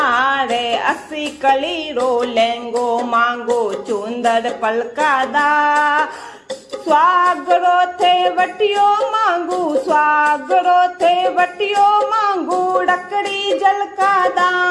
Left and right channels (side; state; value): both; identical; correlation 1.00